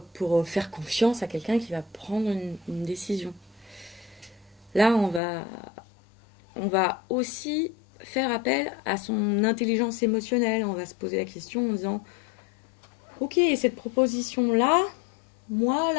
faire confiance à quelqu'un qui va prendre une décision. Là, on va aussi faire appel à son intelligence émotionnelle. On va se poser la question en disant ok, cette proposition-là, moi,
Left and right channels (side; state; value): right; drops out; at 5.2 s